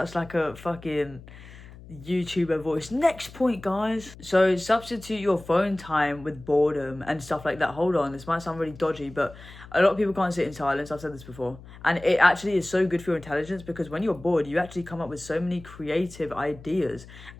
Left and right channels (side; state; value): left; noise; hum, 18 dB below the sound